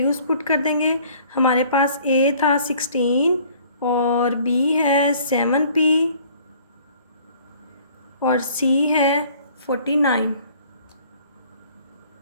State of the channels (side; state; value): both; inverted; correlation -0.55